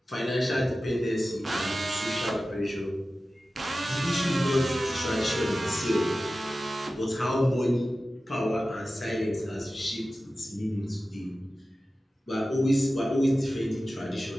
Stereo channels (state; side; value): normal; both; correlation 0.95